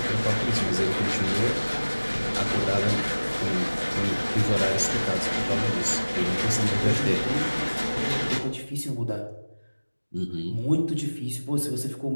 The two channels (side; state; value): both; inverted; correlation -1.00